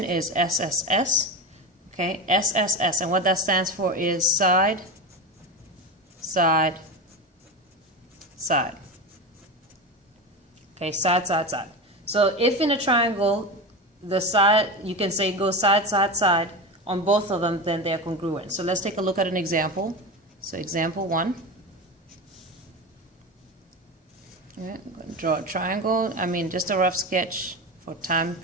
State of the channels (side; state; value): both; normal; correlation 0.22